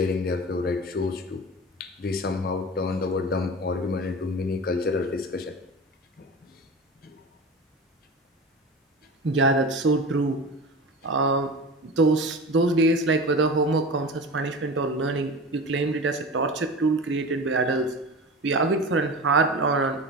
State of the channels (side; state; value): both; normal; correlation 0.31